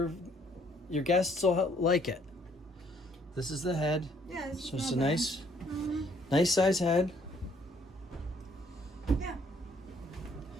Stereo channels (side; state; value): both; normal; correlation 0.64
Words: guests will like it. This is the head. Yeah, it's So it's not a bad. nice size head. Yeah,